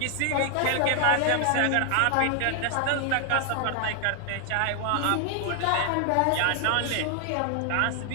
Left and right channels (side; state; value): both; different; correlation 0.00